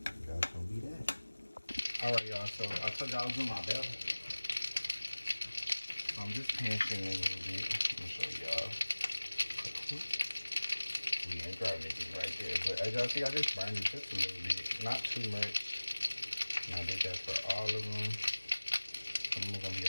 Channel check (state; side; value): inverted; both; correlation -1.00